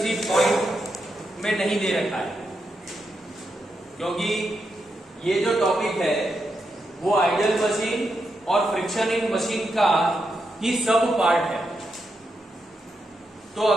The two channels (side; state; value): both; normal; correlation 0.84